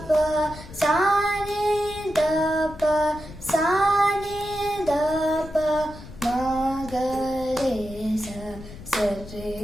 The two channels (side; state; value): left; noise; rumble, 15 dB below the sound